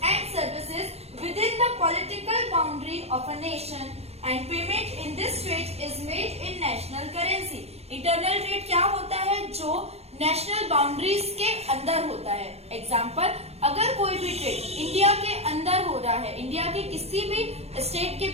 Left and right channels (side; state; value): left; late; 0.30 ms